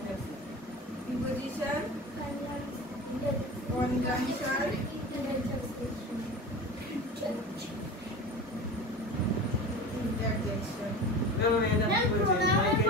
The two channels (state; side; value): normal; both; correlation 0.32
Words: প্রিপোজিশন, কনজাংশন, ইন্টারজেকশন। প্রোনাউনের